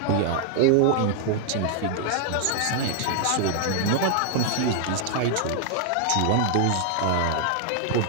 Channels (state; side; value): different; both; correlation 0.00